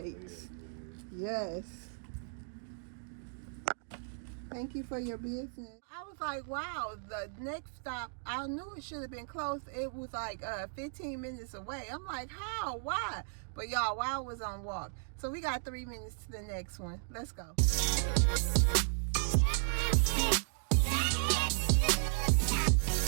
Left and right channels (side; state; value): left; silent; digital silence